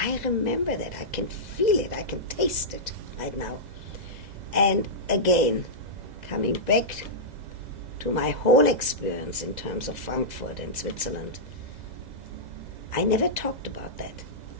remember that. I can feel it. I can taste it right now. And again, coming back to my whole experience in terms of Frankfurt and Switzerland, I never talked about that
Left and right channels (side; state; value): left; late; 2.0 ms